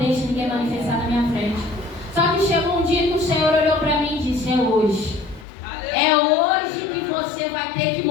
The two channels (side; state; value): right; drops out; at 5.5 s